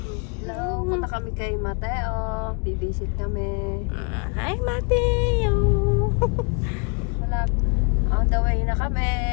Hello, punta kami kay Mateo. Bibisit kami. Hi, Mateo! Wala. On the way na kami.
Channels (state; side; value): quieter; right; 35.7 dB